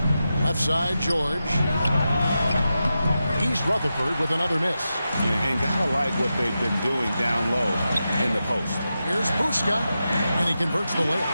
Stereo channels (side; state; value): both; inverted; correlation -0.90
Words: Left side, George. East Rutherford with another miss. And gotta like what they've been doing down low in the post. Here's Buska, and he converts the layup.